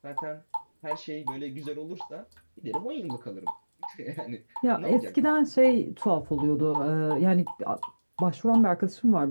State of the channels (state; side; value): inverted; both; correlation -1.00